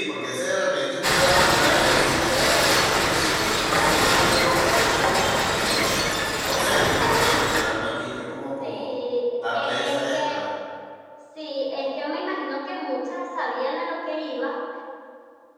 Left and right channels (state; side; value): identical; both; correlation 1.00